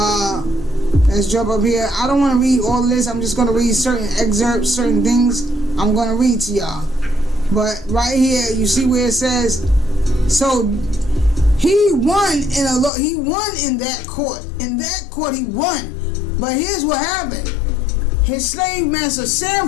Let's jump up here. I don't want to read all of this. I'm just going to read certain excerpts, certain things I'm going to read to y'all. But right here, you see where it says, so he won in that court. In that court, he won. But here's what happened. His slave master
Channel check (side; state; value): right; drops out; at 12.9 s